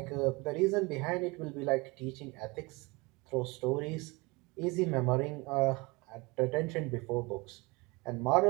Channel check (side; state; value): left; quieter; 25.4 dB